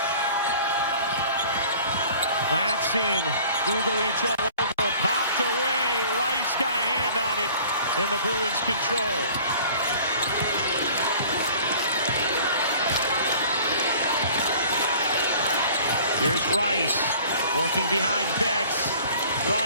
Latson. Dugalich all over. Popped away. Rice got a hand on it. And the Bruins control. Here's Rice. Working behind Betts.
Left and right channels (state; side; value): inverted; both; correlation -0.48